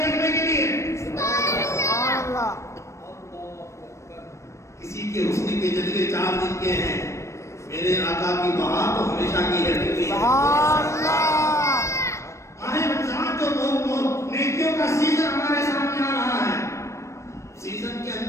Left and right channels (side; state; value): right; late; 0.14 ms